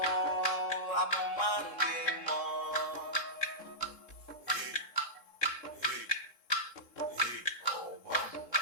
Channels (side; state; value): right; late; 3.7 ms